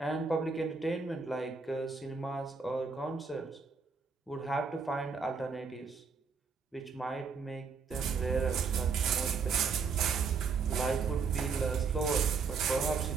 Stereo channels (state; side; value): quieter; left; 5.1 dB